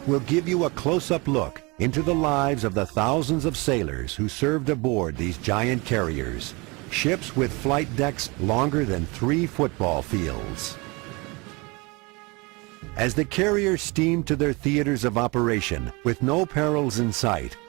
will give you a close-up look into the lives of the thousands of sailors who served aboard these giant carriers, ships with flight decks longer than 3 football fields. As the carriers steamed to their theaters of operation with no perils in sight,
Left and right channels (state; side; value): quieter; left; 26.9 dB